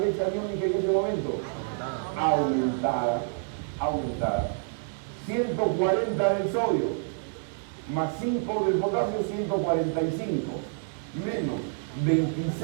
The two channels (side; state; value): left; silent; digital silence